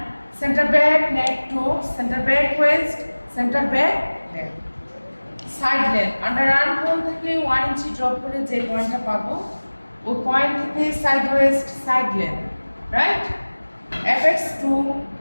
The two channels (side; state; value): both; inverted; correlation -1.00